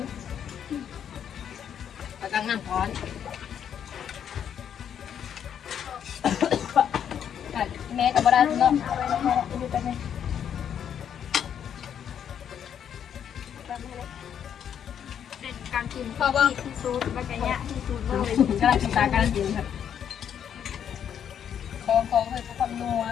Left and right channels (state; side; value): quieter; right; 8.8 dB